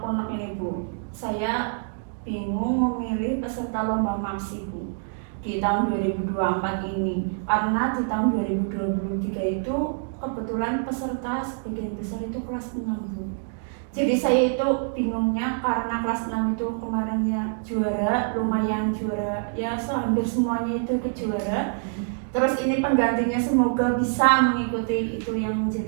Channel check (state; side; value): silent; left; digital silence